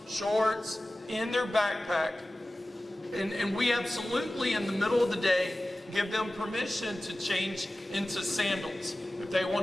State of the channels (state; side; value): normal; both; correlation 0.96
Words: shorts in their backpack. And we absolutely, in the middle of the day, give them permission to change into sandals. If they